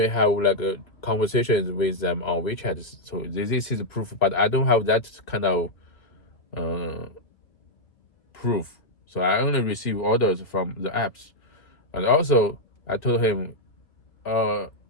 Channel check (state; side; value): late; right; 2.3 ms